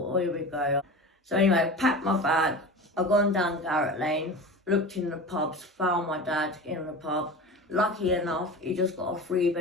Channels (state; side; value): normal; both; correlation 0.31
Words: oh, here we go. So anyway, I packed my bag, I've gone down Garrett Lane, looked in the pubs, found my dad in the pub. Lucky enough, he just got a